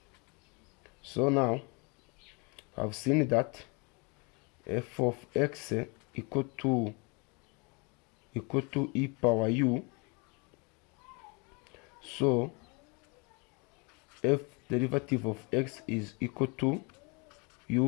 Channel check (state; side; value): quieter; right; 30.9 dB